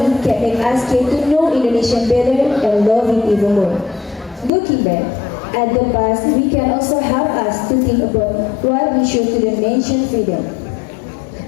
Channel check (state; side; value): drops out; right; at 4.5 s